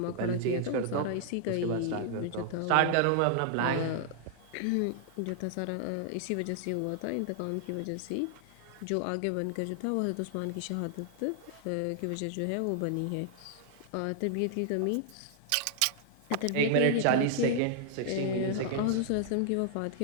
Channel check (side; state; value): both; different; correlation 0.00